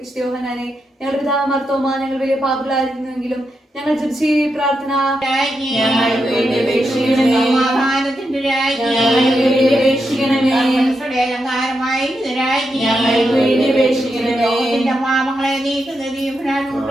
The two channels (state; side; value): normal; both; correlation 0.85